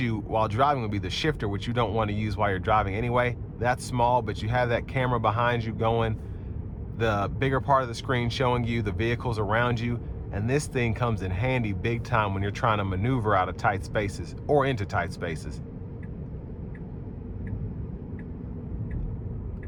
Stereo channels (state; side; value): identical; both; correlation 1.00